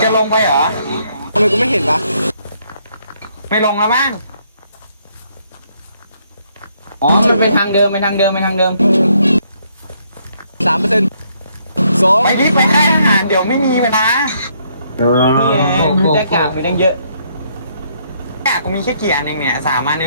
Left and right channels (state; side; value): inverted; both; correlation -0.70